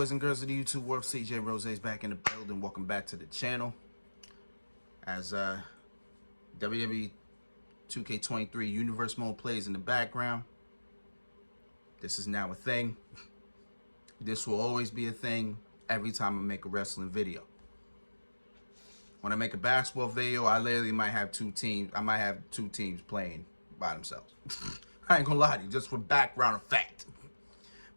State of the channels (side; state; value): both; inverted; correlation -1.00